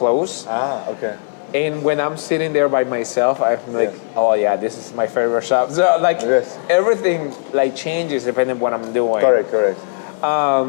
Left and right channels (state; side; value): silent; right; 62 dB below the other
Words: Okay. And when I'm sitting there by myself, I'm like, oh yeah, this is my favorite shop. So like everything like changes depending on what I'm doing. Correct.